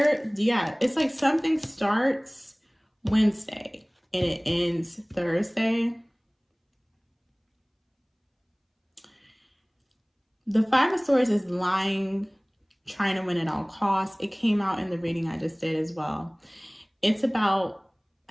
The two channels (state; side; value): identical; both; correlation 1.00